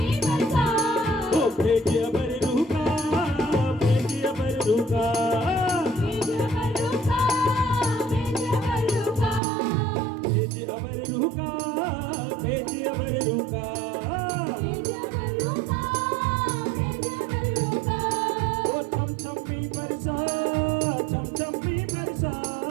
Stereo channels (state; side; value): drops out; left; at 9.4 s